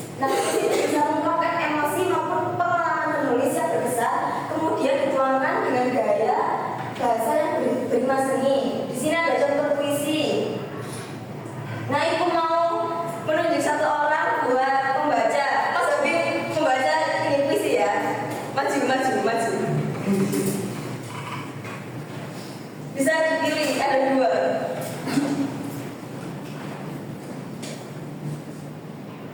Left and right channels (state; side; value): identical; both; correlation 1.00